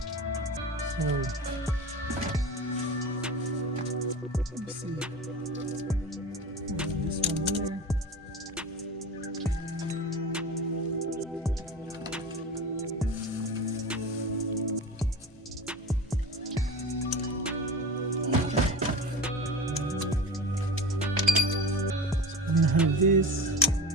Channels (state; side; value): normal; both; correlation 0.31